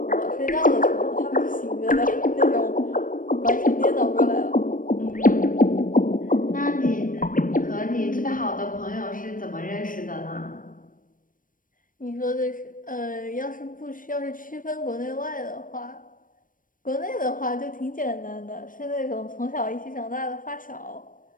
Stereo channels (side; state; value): right; late; 0.39 ms